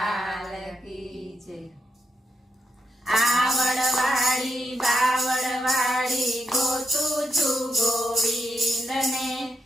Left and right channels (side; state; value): both; normal; correlation 0.84